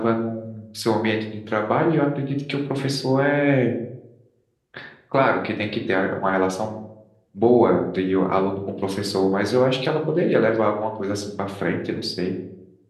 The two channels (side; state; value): both; identical; correlation 1.00